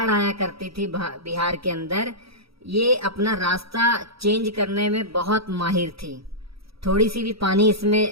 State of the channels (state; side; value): late; left; 0.76 ms